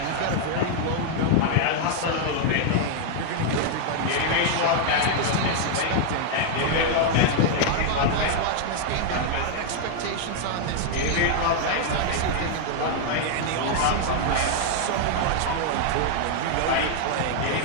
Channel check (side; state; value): both; different; correlation 0.00